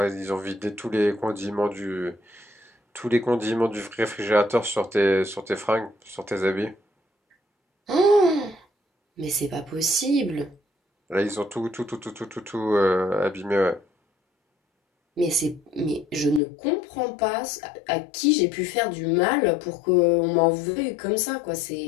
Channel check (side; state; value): right; drops out; at 16.4 s